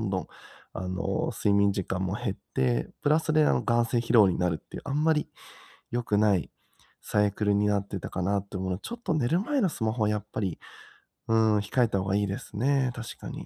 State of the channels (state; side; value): identical; both; correlation 1.00